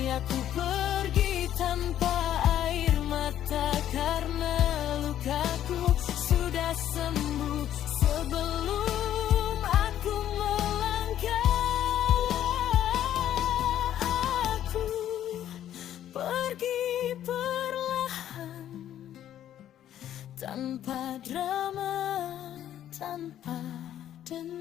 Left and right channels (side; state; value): right; quieter; 11.3 dB